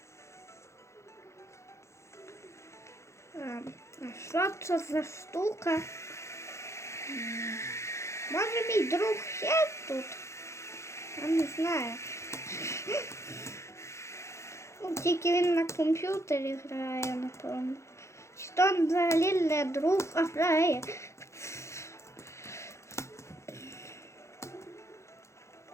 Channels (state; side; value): late; right; 0.14 ms